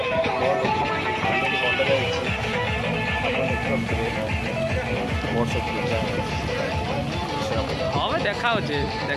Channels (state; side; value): identical; both; correlation 1.00